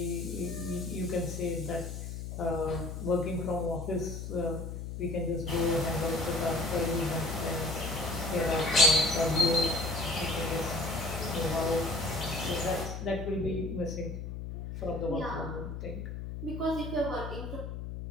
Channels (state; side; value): noise; left; hum, 7 dB below the sound